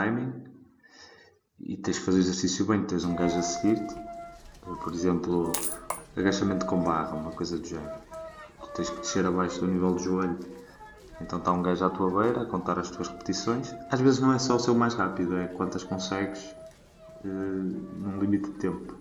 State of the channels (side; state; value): both; identical; correlation 1.00